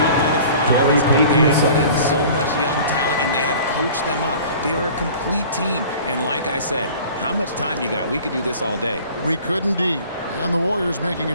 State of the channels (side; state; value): both; inverted; correlation -0.45